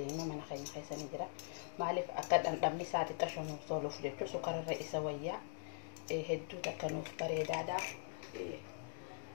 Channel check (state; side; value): silent; right; digital silence